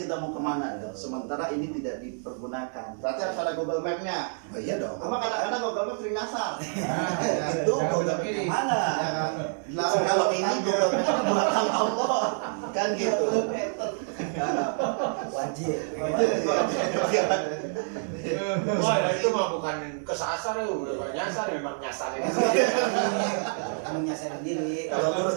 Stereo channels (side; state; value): left; silent; 60 dB below the other